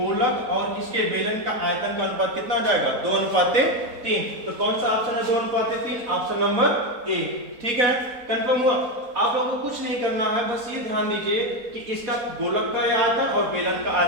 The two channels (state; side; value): late; left; 4.1 ms